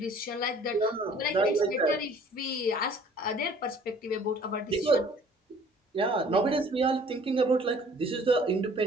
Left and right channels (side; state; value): both; normal; correlation 0.53